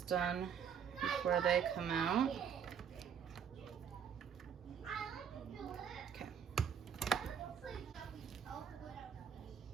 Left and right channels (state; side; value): quieter; left; 7.7 dB